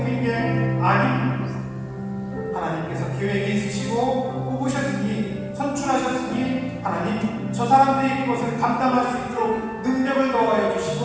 게 아닙니다. 하나님께서 계획이 있으시고 뽑으셨으니 선출하셨으니 하나님 저 사람들이 그것을 감당할 수 있도록 능력을 더하여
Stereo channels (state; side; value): identical; both; correlation 1.00